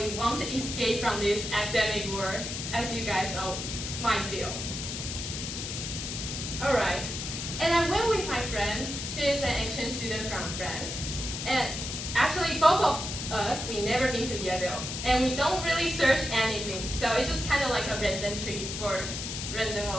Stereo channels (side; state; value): left; noise; hiss, 5 dB below the sound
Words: want to escape from this academic world, as you guys all might feel. Alright, and I went with my friend. She is an exchange student from France, and actually both of us, we never been to Yale, and we don't really search anything, so it's just kind of like a random trip for random